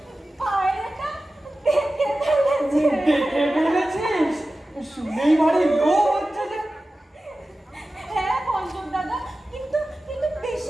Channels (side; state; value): both; normal; correlation 0.95